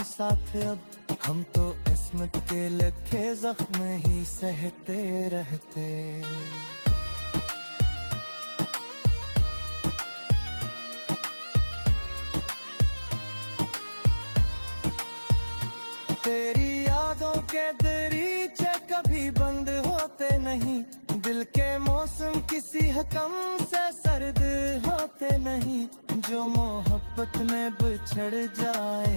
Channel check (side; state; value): both; inverted; correlation -1.00